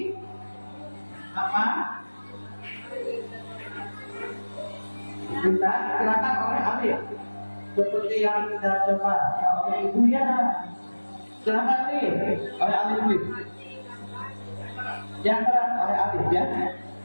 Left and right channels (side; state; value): both; inverted; correlation -1.00